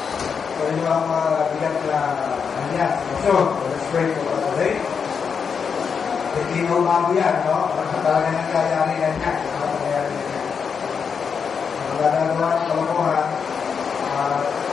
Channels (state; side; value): quieter; right; 6.3 dB